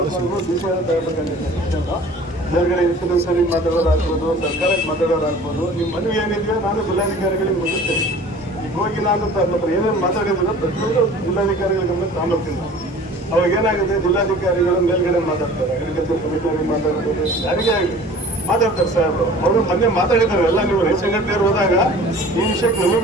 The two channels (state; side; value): normal; both; correlation 0.45